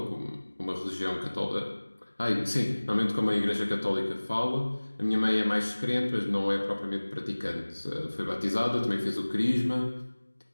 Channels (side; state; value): both; inverted; correlation -1.00